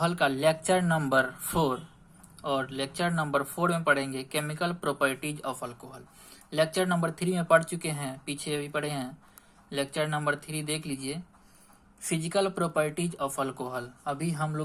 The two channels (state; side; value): identical; both; correlation 1.00